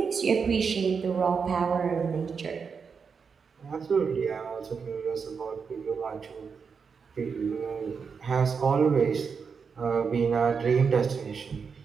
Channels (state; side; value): quieter; left; 5.8 dB